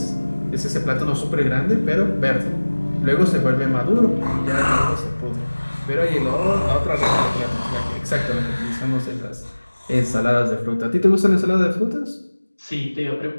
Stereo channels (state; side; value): inverted; both; correlation -1.00